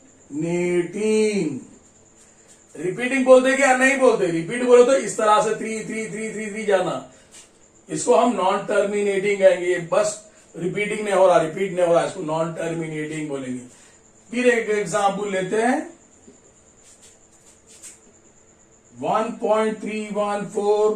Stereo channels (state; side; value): identical; both; correlation 1.00